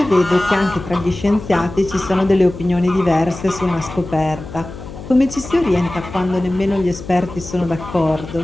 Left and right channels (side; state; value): left; noise; hum, 13 dB below the sound